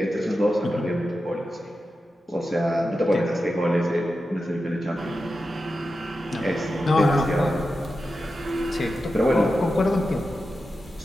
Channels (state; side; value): normal; both; correlation 0.91